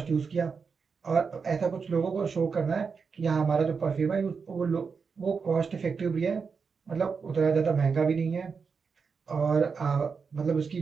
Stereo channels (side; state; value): left; quieter; 5.5 dB